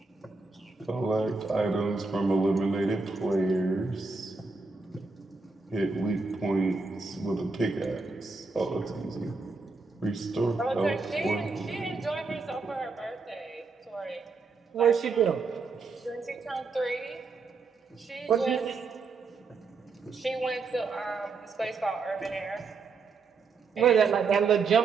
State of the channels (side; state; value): left; quieter; 4.2 dB